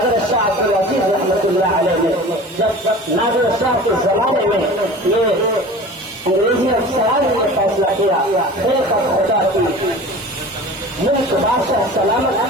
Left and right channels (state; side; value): normal; both; correlation 0.38